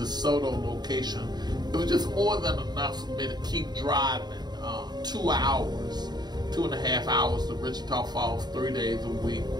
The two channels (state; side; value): late; left; 0.20 ms